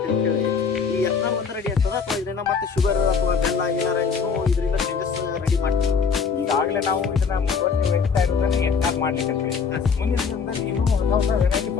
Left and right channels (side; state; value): right; quieter; 5.8 dB